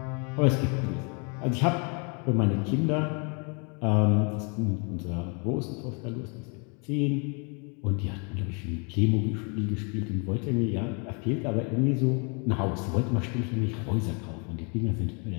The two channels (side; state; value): right; quieter; 35.2 dB